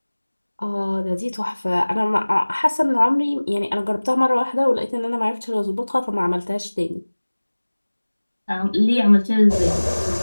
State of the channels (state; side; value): inverted; both; correlation -1.00